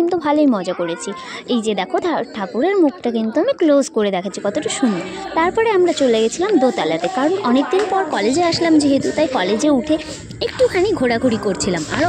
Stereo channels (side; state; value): both; identical; correlation 1.00